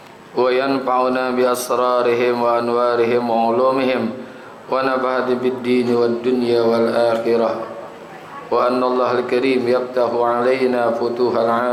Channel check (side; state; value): both; identical; correlation 1.00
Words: wa yanfa'una bi asrarihim wa anwarihim wa ulumihim wa nafa'ati bid din wad dunya wal akhirah wa anna Allah al-karim yaftahu alaina